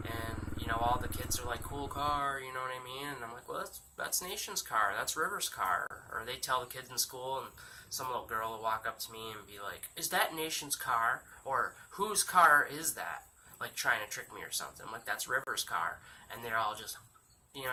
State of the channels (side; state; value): both; identical; correlation 1.00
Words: and, you know, all the kids are like, cool car, you know what I mean? And I'm like, well, that's Nation's car, that's River's car. Or they tell the kids in school, and some little girl will walk up to me and be like, is that Nation's car? Or, whose car is that? Like, trying to trick me or something. I'm like, that's River's car. And they're all just, you know